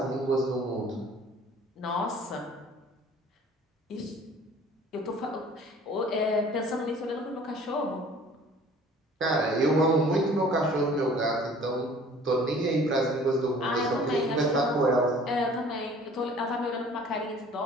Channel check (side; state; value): both; normal; correlation 0.50